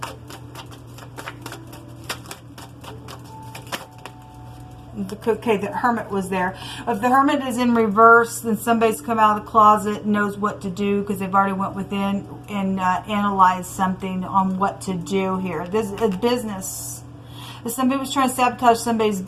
Okay, the Hermit was there. If the Hermit is in reverse, then somebody's come out of the closet and knows what to do because they've already went within and analyzed something on what to do here. This is a business. If somebody was trying to sabotage somebody's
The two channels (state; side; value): identical; both; correlation 1.00